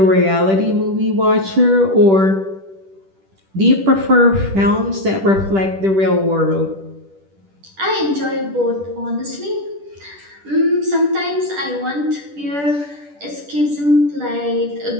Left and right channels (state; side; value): late; left; 10 ms